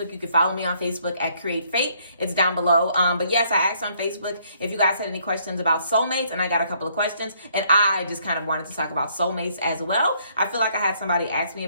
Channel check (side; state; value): both; inverted; correlation -0.67